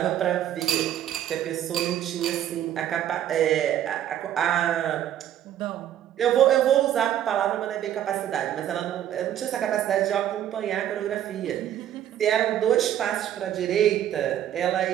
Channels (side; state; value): left; quieter; 11.2 dB